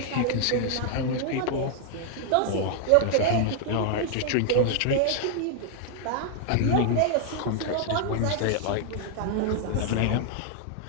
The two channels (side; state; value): both; different; correlation -0.01